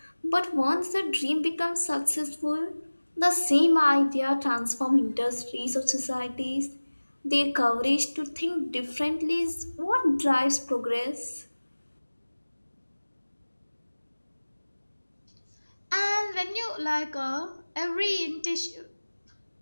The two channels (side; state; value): both; inverted; correlation -1.00